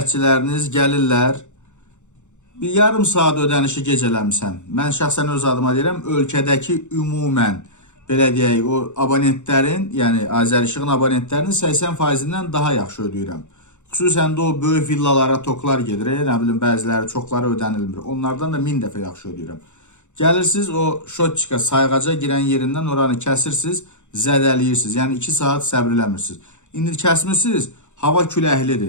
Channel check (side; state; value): right; late; 0.84 ms